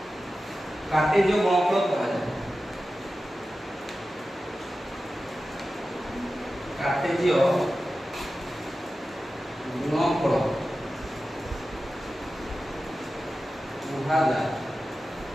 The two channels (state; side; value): normal; both; correlation 0.93